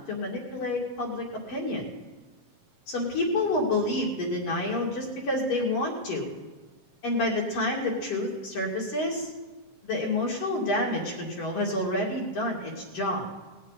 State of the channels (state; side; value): late; right; 7.5 ms